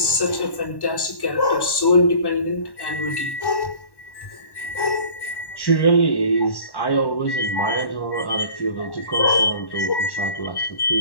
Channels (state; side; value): late; right; 1.1 ms